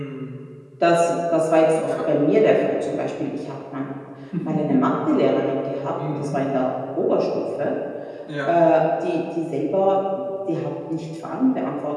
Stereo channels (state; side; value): identical; both; correlation 1.00